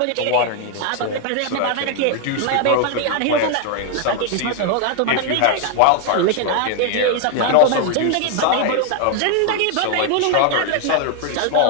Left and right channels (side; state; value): both; different; correlation 0.01